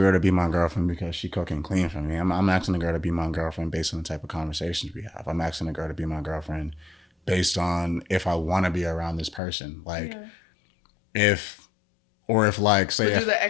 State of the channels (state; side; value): drops out; right; at 9.4 s